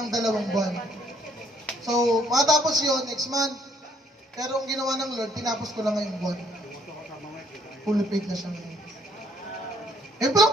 2 buwan. So, matapos yun, next month. Pero ang ginawa ng Lord, tinapos ko lang ngayong buwan. Fully paid na siya ngayon. Eh,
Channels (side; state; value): both; normal; correlation 0.66